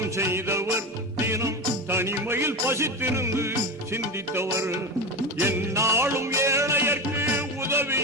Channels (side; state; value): both; normal; correlation 0.21